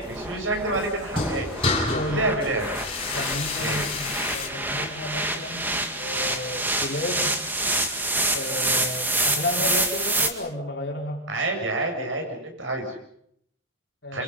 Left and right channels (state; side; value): normal; both; correlation 0.03